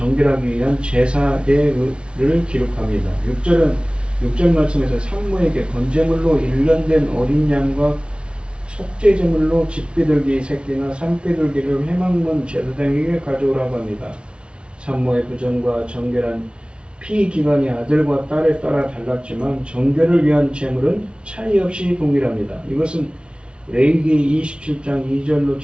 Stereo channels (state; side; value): late; left; 0.057 ms